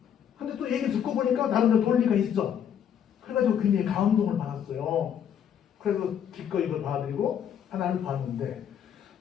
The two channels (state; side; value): quieter; right; 8.8 dB